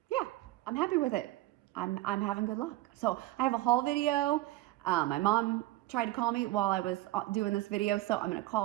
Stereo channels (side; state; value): left; quieter; 17.4 dB